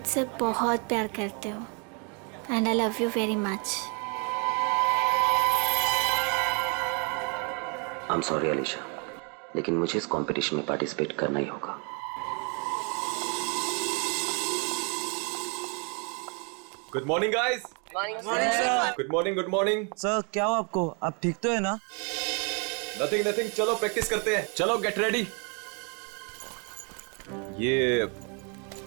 बहुत प्यार करते हो and I love you very much. I am sorry Alisha, लेकिन मुझे इस कंपटीशन में पार्टिसिपेट करना ही होगा। Good morning guys. Morning sir. Good morning, good morning. Sir क्या हो आपको? आप ठीक तो है ना? नथिंग नथिंग, चलो प्रैक्टिस करते हैं। चलो गेट रेडी। ये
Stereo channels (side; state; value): left; quieter; 35.8 dB